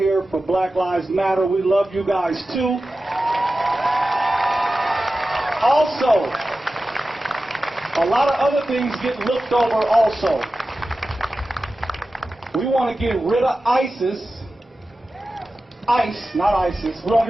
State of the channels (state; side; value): normal; both; correlation 0.94